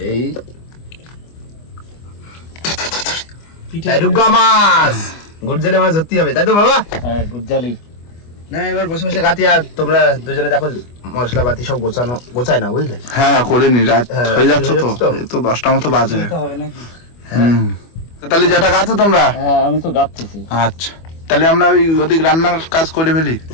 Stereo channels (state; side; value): late; right; 25 ms